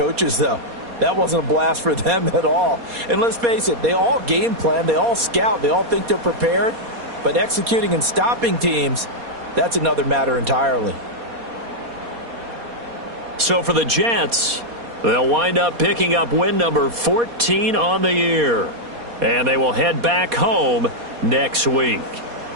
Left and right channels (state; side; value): late; left; 4.2 ms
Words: though? That wasn't a blast for them at all. And let's face it, they all game plan, they all scout, they all think they're prepared, but executing and stopping teams, that's another matter entirely. So for the Jets, they'll wind up picking up win number 14 on the year. And they will head back home next week.